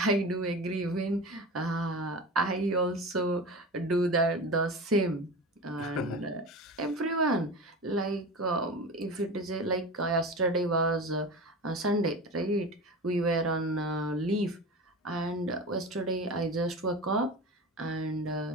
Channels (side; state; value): both; normal; correlation 0.30